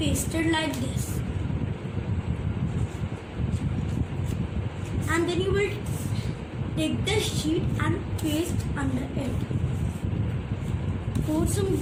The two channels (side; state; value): both; identical; correlation 1.00